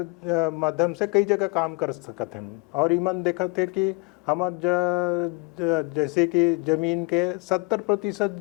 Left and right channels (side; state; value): right; quieter; 29.8 dB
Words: माध्यम से कई जगह काम कर सकते हैं। और ईमन देखा थे कि हम जैसे कि ज़मीन के 70%